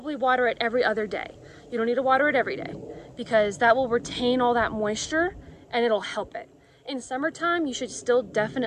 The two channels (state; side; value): identical; both; correlation 1.00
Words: water it every other day. You don't need to water it every day because that will retain all that moisture and it'll help it. In summertime, you should still